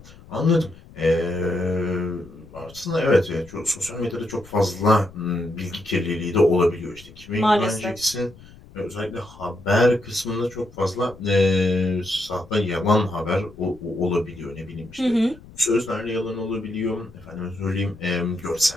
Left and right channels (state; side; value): noise; left; rumble, 21 dB below the sound